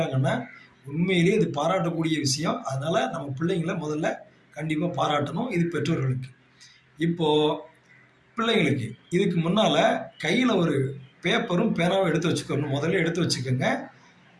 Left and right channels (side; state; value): both; identical; correlation 1.00